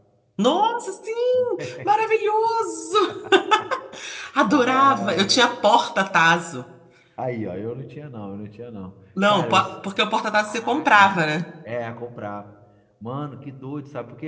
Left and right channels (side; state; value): both; identical; correlation 1.00